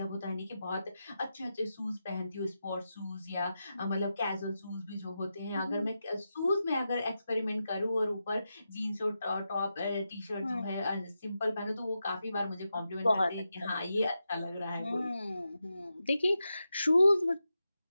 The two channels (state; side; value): inverted; both; correlation -0.89